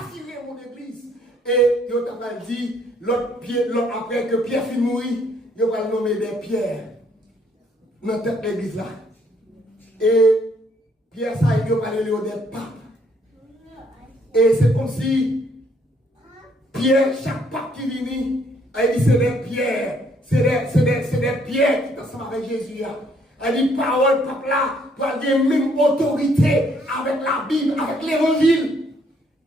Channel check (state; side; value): normal; both; correlation 0.67